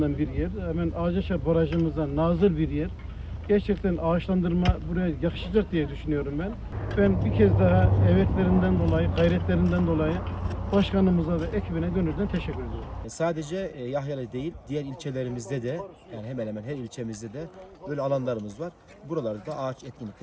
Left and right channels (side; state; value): both; identical; correlation 1.00